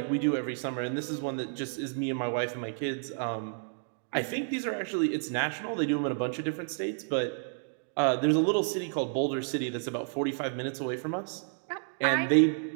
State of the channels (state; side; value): silent; left; digital silence